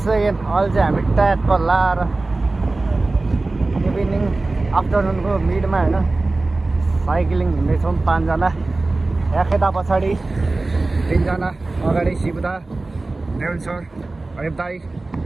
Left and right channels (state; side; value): quieter; left; 3.2 dB